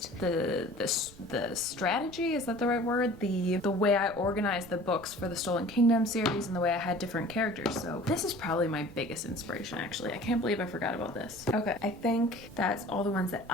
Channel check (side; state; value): right; noise; rumble, 22 dB below the sound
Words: the strategy, is that the right word? The way I organized the books for the Stolen Kingdom series and the way I had different characters. So this is probably my biggest inspiration, actually. I can't believe I forgot about this. Okay, I think that's all the ones that